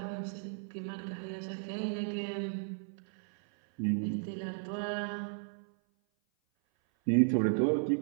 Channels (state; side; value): silent; left; 55 dB below the other